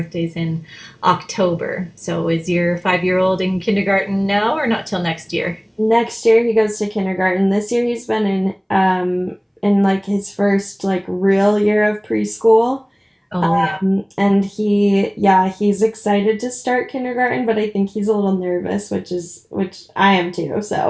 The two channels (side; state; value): both; identical; correlation 1.00